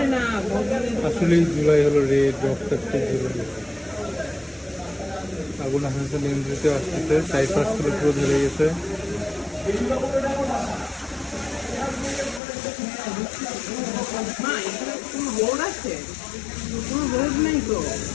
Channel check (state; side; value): drops out; right; at 12.4 s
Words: আসলেই জুলাই হলো রেড রক্তাক্ত জুলাই আগুন আস্তে আস্তে নিয়ন্ত্রিত আসতেছে চারিপাশগুলো পুরো ধরে গেছে